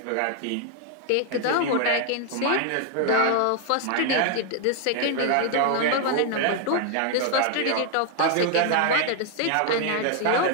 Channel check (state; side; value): different; both; correlation 0.00